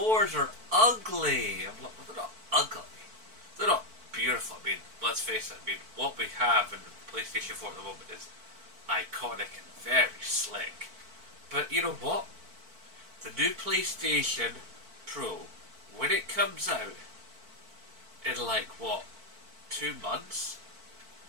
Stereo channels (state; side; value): late; left; 4.5 ms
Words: are ugly. I'm like, well, they're not ugly. They're not beautiful. I mean, let's face it. I mean, what we have in the PlayStation 4 at the moment is iconic and very slick. But you know what? The new PlayStation Pro, when it comes out in 2 months,